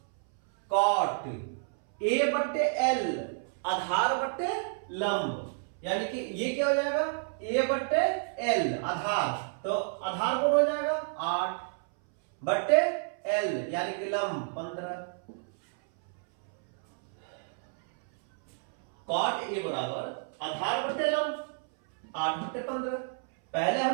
A/L आधार बट्टे लंब, यानी कि ये क्या हो जाएगा A/L आधार, तो आधार कौन हो जाएगा 8/L यानी कि लंब 15। कॉट ए बराबर आधार बट्टे लंब 8/15। पहले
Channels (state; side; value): silent; left; 58 dB below the other